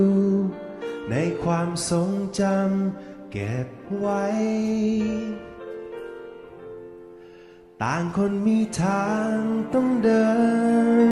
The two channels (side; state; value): both; identical; correlation 1.00